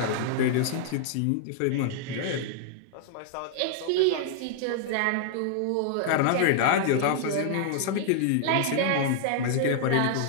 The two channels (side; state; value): both; different; correlation -0.01